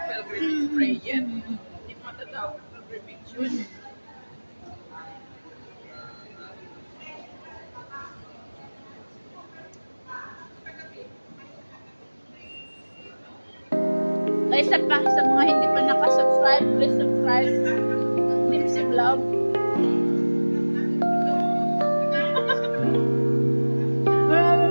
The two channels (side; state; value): both; inverted; correlation -1.00